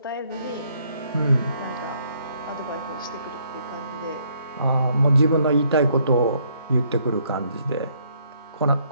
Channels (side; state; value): both; inverted; correlation -0.68